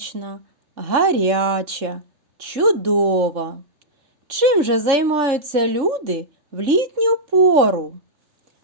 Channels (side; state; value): left; late; 3.6 ms